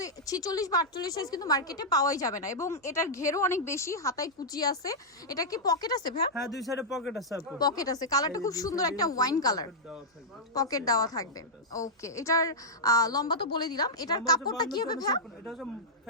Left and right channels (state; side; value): normal; both; correlation -0.08